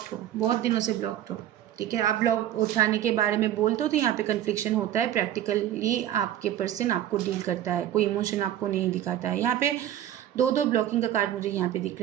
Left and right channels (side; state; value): left; quieter; 11.7 dB